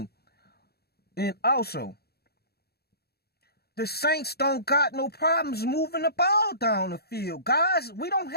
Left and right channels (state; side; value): late; right; 0.46 ms